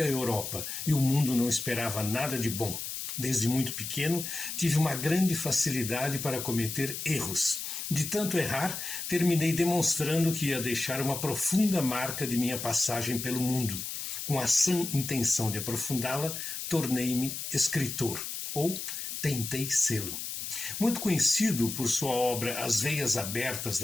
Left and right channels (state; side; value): noise; left; hiss, 6 dB below the sound